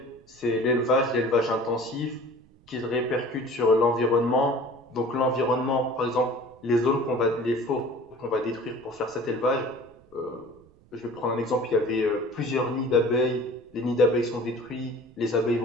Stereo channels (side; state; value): right; noise; rumble, 28 dB below the sound